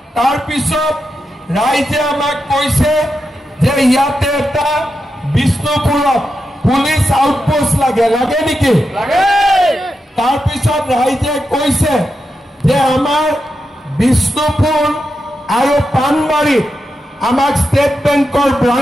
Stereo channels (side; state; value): both; normal; correlation 0.87